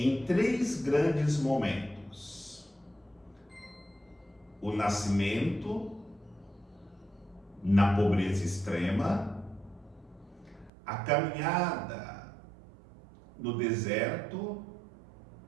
três grandes momentos: o nascimento, na pobreza extrema, a caminhada no deserto,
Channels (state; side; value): drops out; left; at 10.7 s